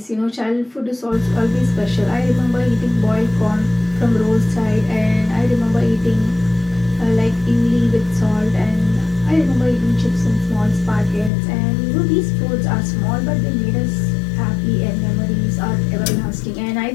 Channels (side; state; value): right; drops out; at 11.3 s